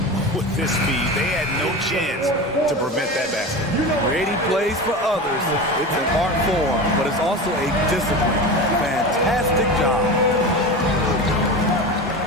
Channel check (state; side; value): normal; both; correlation 0.27